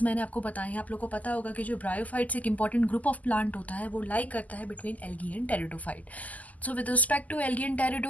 मैंने आपको बताए हैं। आप लोगों को पता होगा कि जो ब्रायोफाइट्स एक इंपॉर्टेंट ग्रुप ऑफ प्लांट होता है वो लाइक करता है between algae and pteridophyte. So with respect to algae and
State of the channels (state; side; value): late; right; 0.077 ms